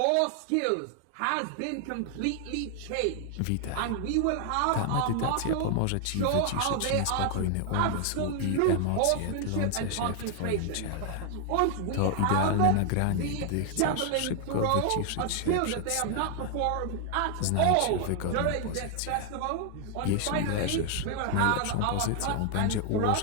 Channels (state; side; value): different; both; correlation 0.00